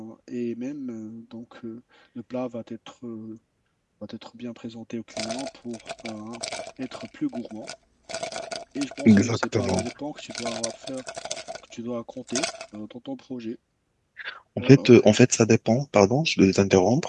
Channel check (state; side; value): identical; both; correlation 1.00